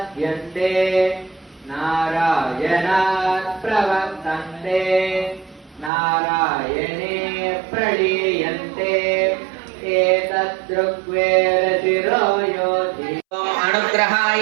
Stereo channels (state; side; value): drops out; left; at 5.9 s